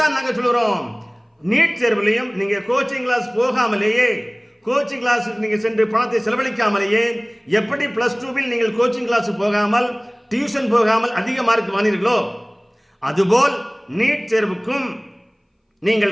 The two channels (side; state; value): both; identical; correlation 1.00